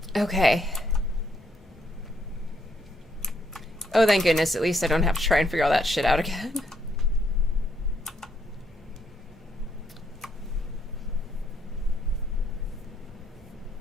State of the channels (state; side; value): normal; both; correlation 0.73